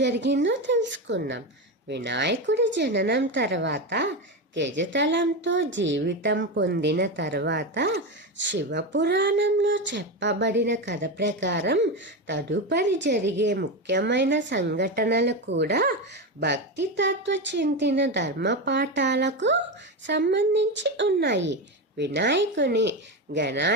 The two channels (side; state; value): both; normal; correlation 0.16